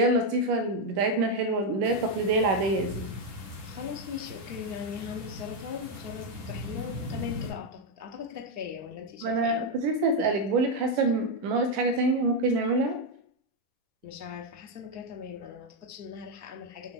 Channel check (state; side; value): late; left; 10 ms